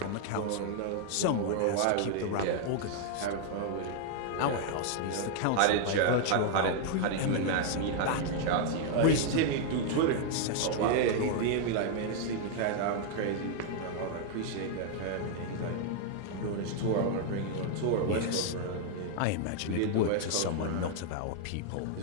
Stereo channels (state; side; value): different; both; correlation 0.00